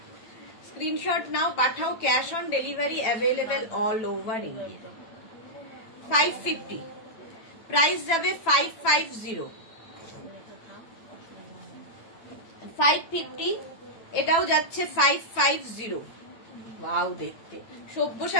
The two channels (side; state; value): right; late; 9.0 ms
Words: স্ক্রিনশট নাও, পাঠাও, cash on delivery available all over India. 550 price যাবে 550, 550 এটাও যাচ্ছে 550। ওয়াও, দেখতে